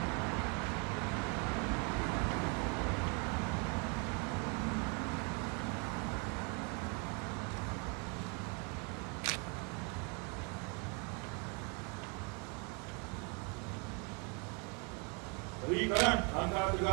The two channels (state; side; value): quieter; left; 32.6 dB